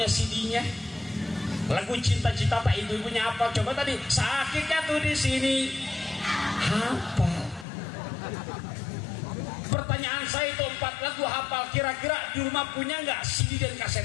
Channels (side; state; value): right; drops out; at 7.7 s